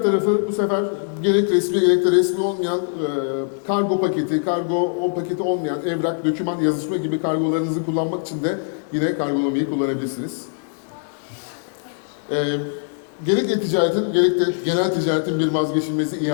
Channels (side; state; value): right; silent; digital silence